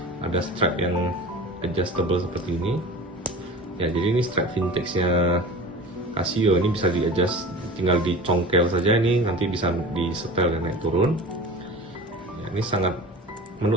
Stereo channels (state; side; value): normal; both; correlation 0.36